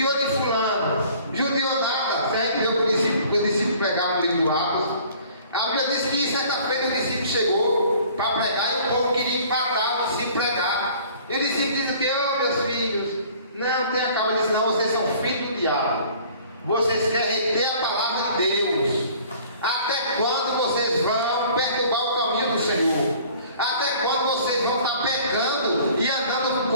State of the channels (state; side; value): inverted; both; correlation -0.51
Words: de fulano, judiou nada. Se a gente vê o discípulo pregar no livro do Atos, a Bíblia diz que certa feita o discípulo chegou para pregar e o povo queria empatar o discípulo pregar. E o discípulo diz o que? Oh meus filhos, não tenha calma. Ele disse: não, vocês são filhos do diabo, vocês querem reter a palavra de Deus. Até quando vocês vão perturbar o caminho do Senhor? Até quando vocês vão estar pecando e andando